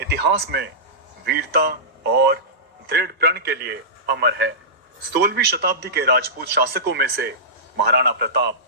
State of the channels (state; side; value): normal; both; correlation -0.18